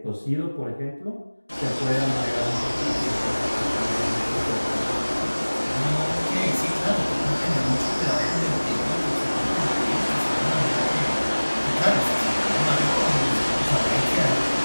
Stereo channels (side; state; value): both; inverted; correlation -1.00